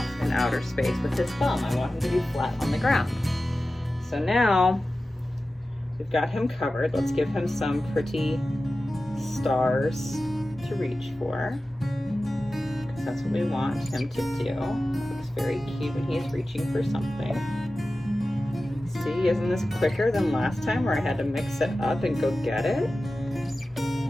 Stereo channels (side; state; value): both; normal; correlation 0.95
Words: in outer space with his thumb. I want him to be flat on the ground. So now we've got him covered. Let's give him some pretty stars to reach for, because that's what we want him to do. It looks very cute when he's reaching for something. See, isn't this quicker than last time where I had to mix it up and go get it?